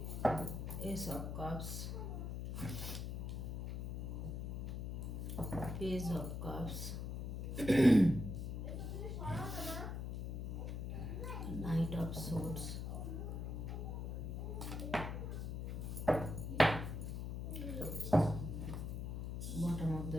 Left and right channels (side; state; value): left; noise; hum, 4 dB below the sound